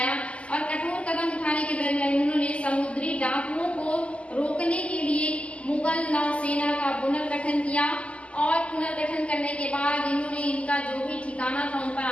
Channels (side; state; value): right; late; 0.060 ms